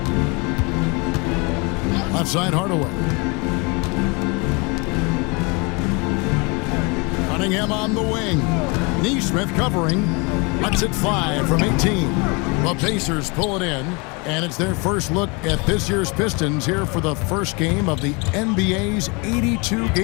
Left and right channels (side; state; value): right; quieter; 29.5 dB